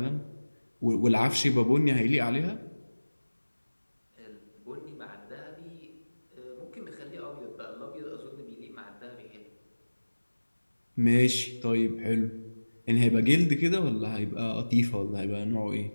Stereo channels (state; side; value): inverted; both; correlation -1.00